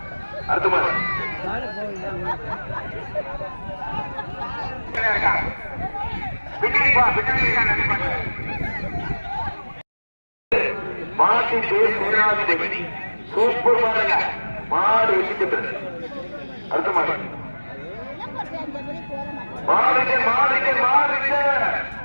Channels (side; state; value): both; inverted; correlation -1.00